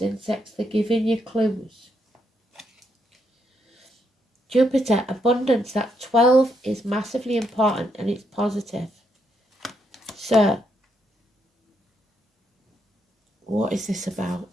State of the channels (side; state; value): both; normal; correlation 0.77